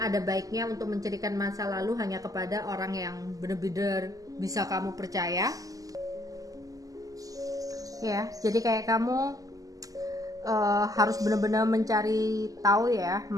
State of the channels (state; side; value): late; left; 0.17 ms